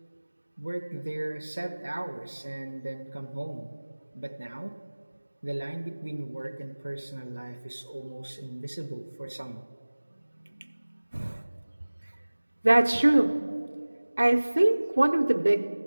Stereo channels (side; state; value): both; inverted; correlation -1.00